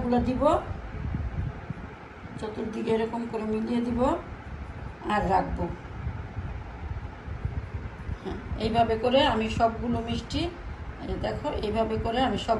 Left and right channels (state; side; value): identical; both; correlation 1.00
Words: দিব, চতুর্দিকে এরকম করে মিলিয়ে দিব আর রাখবো। হ্যাঁ, এইভাবে করে আমি সবগুলো মিষ্টি, দেখো এইভাবে করে আমি